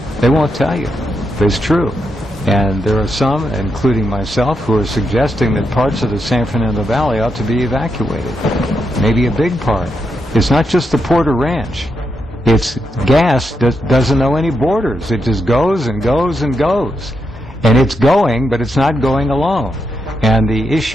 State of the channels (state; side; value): normal; both; correlation 0.84